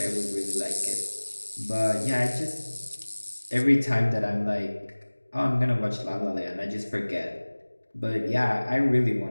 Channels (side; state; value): both; inverted; correlation -1.00